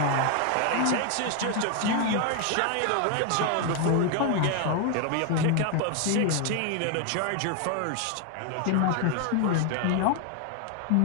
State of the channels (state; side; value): different; both; correlation 0.01